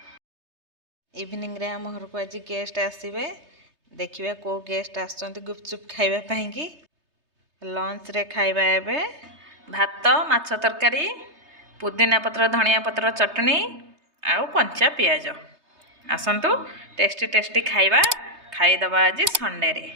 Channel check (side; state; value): left; late; 3.3 ms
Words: इवनिंग रे हम घर को आज गेस्ट आसीबे। देखिबा को गेस्ट आछंती गुपचुप खाइबा पई कि। लंच रे खाइबा एबे भात, माछ तरकारी, पुदीना पत्र, धनिया पत्र चटनी, आउ कंचा पियाज। आसंतु टेस्टी टेस्टी खाइबा खाइदबा आज संडे रे।